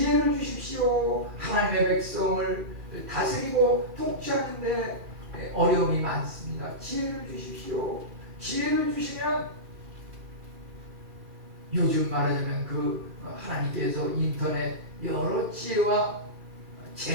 주십시오. 하나님의 백성을 다스리고 통치하는데 어려움이 많습니다. 지혜를 주십시오. 지혜를 주시면 요즘 말하자면 그 하나님께서 인터넷 여러 지혜와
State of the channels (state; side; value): late; left; 2.4 ms